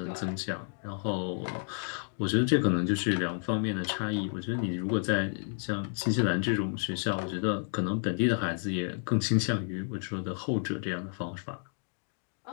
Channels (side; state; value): right; silent; digital silence